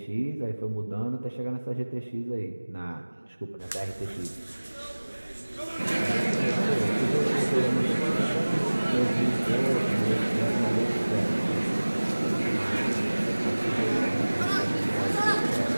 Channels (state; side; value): inverted; both; correlation -1.00